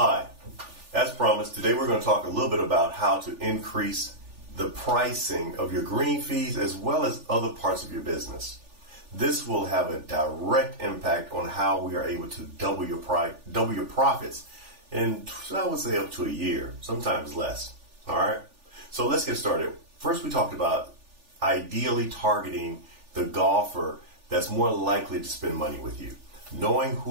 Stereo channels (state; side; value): late; left; 3.4 ms